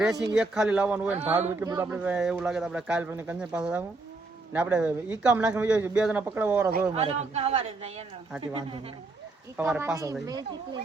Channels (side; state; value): left; quieter; 3.4 dB